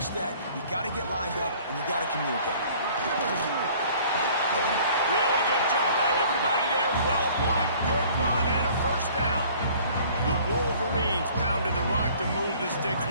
that. You got to get lined up, and you got to communicate. Really good job by everybody there. Well blocked, good run, and a first down. The Wolverines pounded the rock to move the sticks.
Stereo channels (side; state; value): both; inverted; correlation -0.53